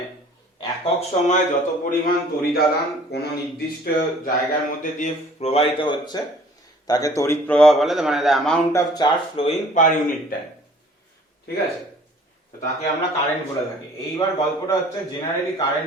একক সময় যত পরিমাণ তড়িদাদান কোনো নির্দিষ্ট জায়গার মধ্যে দিয়ে প্রবাহিত হচ্ছে তাকে তড়িৎ প্রবাহ বলে, মানে the amount of charge flowing per unit time. ঠিক আছে, তো তাকে আমরা কারেন্ট বলে থাকি। এইবার গল্পটা হচ্ছে জেনারেলি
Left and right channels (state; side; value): normal; both; correlation 0.52